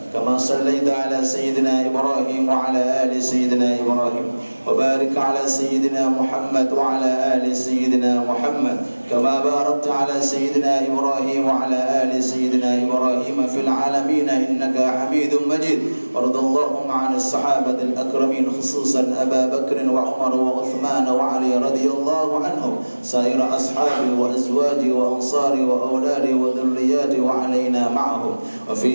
كما صليت على سيدنا إبراهيم وعلى آل سيدنا إبراهيم، وبارك على سيدنا محمد وعلى آل سيدنا محمد كما باركت على سيدنا إبراهيم وعلى آل سيدنا إبراهيم في العالمين إنك حميد مجيد. وارض اللهم عن الصحابة الأكرمين خصوصا أبا بكر وعمر وعثمان وعلي رضي الله عنهم، سائر أصحابه وأزواجه وأنصاره وأولاده وذرياته وعلينا معهم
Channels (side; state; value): both; inverted; correlation -1.00